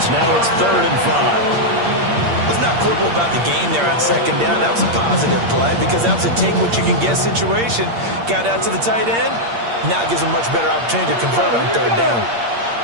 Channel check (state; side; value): late; left; 8.6 ms